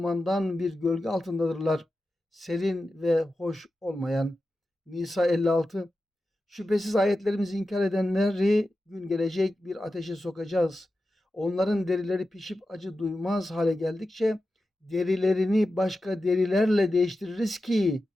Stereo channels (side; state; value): both; normal; correlation 0.92